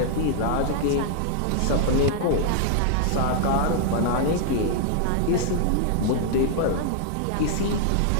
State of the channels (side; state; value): both; different; correlation -0.01